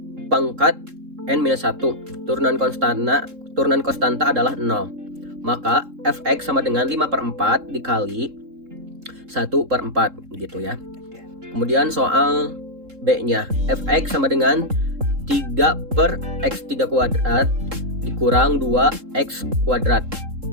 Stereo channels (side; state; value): left; late; 3.7 ms